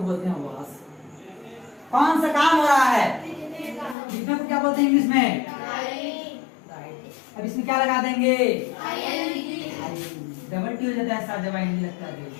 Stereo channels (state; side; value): drops out; right; at 4.0 s